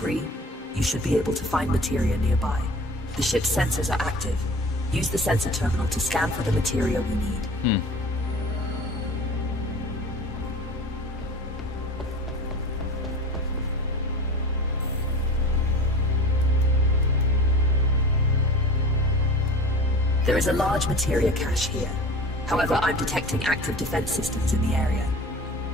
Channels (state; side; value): normal; both; correlation 0.39